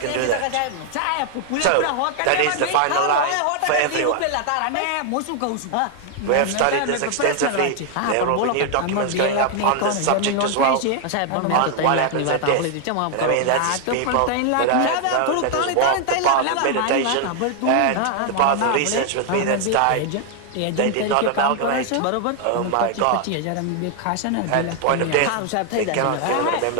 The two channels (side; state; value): both; different; correlation 0.00